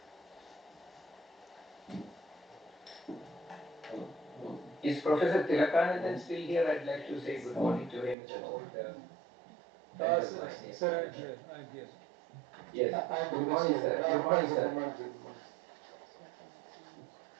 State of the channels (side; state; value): left; drops out; at 8.2 s